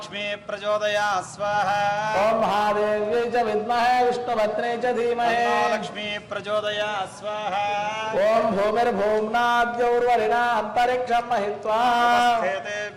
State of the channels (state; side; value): identical; both; correlation 1.00